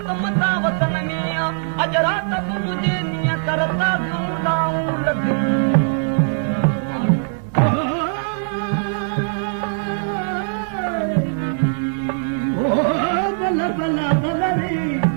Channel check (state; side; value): silent; left; digital silence